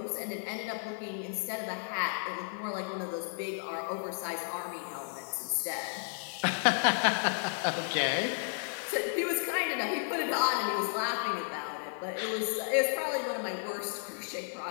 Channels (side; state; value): right; silent; digital silence